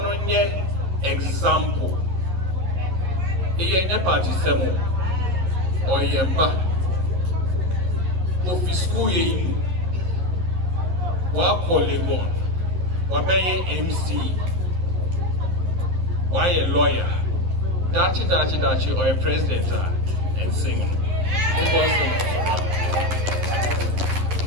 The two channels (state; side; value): late; left; 11 ms